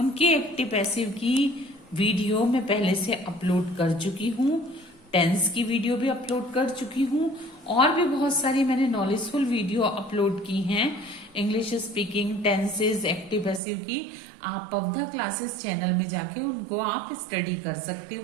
एक्टिव पैसिव की वीडियो मैं पहले से अपलोड कर चुकी हूँ, टेंस की वीडियो भी अपलोड कर चुकी हूँ और भी बहुत सारी मैंने नॉलेजफुल वीडियो अपलोड की हैं English speaking, tenses, active passive की। आप पौधा क्लासेस चैनल में जाके उनको आप स्टडी कर सकते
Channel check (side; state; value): left; drops out; at 13.6 s